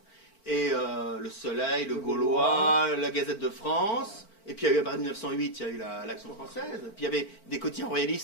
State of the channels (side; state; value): right; late; 4.5 ms